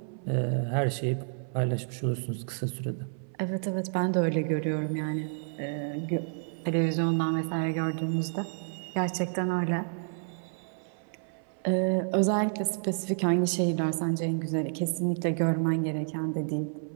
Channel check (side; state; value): left; silent; 58 dB below the other